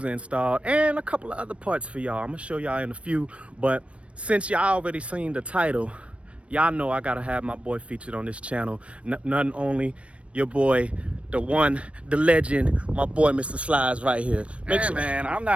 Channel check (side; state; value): left; late; 0.062 ms